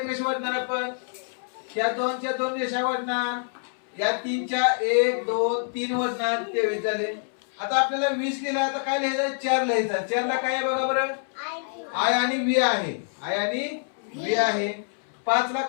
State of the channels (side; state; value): right; silent; 61 dB below the other